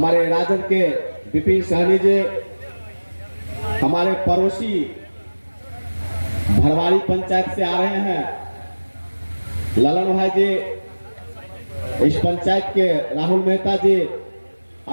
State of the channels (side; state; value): both; inverted; correlation -1.00